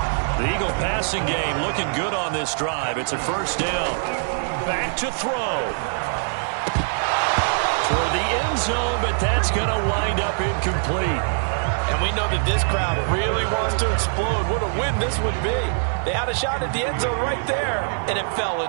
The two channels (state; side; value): silent; left; digital silence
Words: The Eagle passing game looking good on this drive. It's a 1st down. Back to throw. Toward the end zone, but that's going to wind up incomplete. And we know that this crowd really wants to explode. What a win this would be. They had a shot at the end zone right there, and it fell